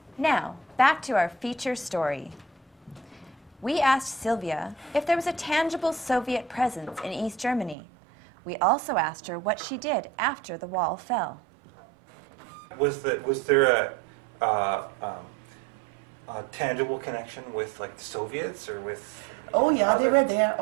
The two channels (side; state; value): left; drops out; at 7.8 s